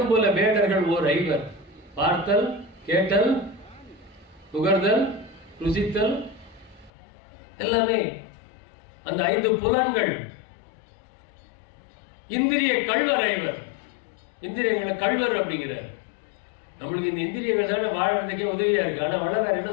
வேடர்கள் ஓர் ஐவர், பார்த்தல் கேட்டல் நுகர்தல் ருசித்தல் எல்லாமே அந்த 5 புலன்கள். இந்திரிய கள்வர் ஐவர், இந்திரியங்களை கள்வர் அப்படிங்கிறார். நம்மளுக்கு இந்த இந்திரியங்கள் தானே வாழறதுக்கே உதவியா இருக்கு. ஆனா வள்ளலார் என்ன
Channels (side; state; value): right; drops out; at 6.9 s